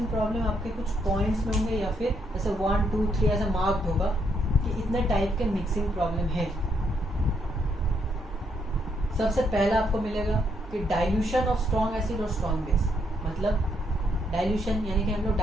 प्रॉब्लम आपके कुछ पॉइंट्स में होंगे, या फिर जैसे 1 2 3 ऐसा मार्क्ड होगा कि इतने टाइप के मिक्सिंग प्रॉब्लम है। सबसे पहला आपको मिलेगा कि डाइल्यूशन ऑफ स्ट्रॉन्ग एसिड और स्ट्रॉन्ग बेस। मतलब डाइल्यूशन यानी कि हम लोग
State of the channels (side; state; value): both; normal; correlation 0.74